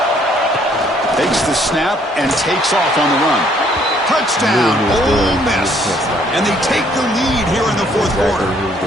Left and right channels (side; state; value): both; normal; correlation 0.64